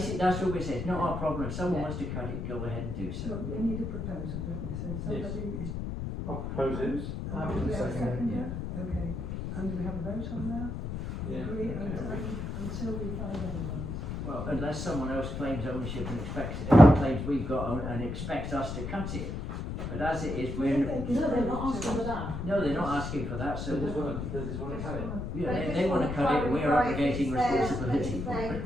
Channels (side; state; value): left; noise; rumble, 5 dB below the sound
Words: That's what we say. It's not our problem. If someone Yeah. wants to cut it, go ahead and do so. So we need a proposal, don't we? So somebody is. I'll propose it. And do we have a seconder? Okay. And do we have a vote on that? Yeah. Agree until we find otherwise. Well, unless someone else claims ownership and claims we've got and expects us to cut it, But as it is, If we're, they can No, they're not talk to asking for us. that. no, they're not asking for that, so, They just wanna cut it. yeah, they wanna cut it, and we're abrogating responsibility for it.